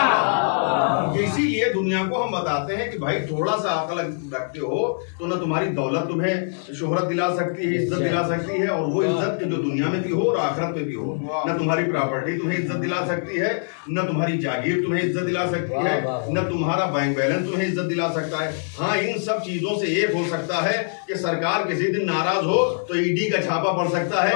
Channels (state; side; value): silent; right; digital silence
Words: इसीलिए दुनिया को हम बताते हैं कि भाई थोड़ा सा अकल रखते हो तो ना तुम्हारी दौलत तुम्हें शोहरत दिला सकती है, इज्जत दिला सकती है, और वो इज्जत जो दुनिया में भी हो और आखिरत में भी हो। न तुम्हारी प्रॉपर्टी तुम्हें इज्जत दिला सकती है, न तुम्हारी जागीर तुम्हें इज्जत दिला सकती है, न तुम्हारा बैंक बैलेंस तुम्हें इज्जत दिला सकता है। हाँ, इन सब चीजों से एक हो सकता है कि सरकार किसी दिन नाराज हो तो ईडी का छापा पड़ सकता है,